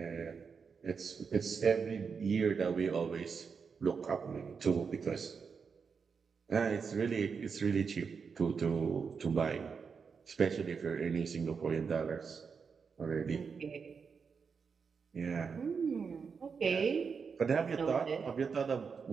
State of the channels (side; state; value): left; quieter; 5.7 dB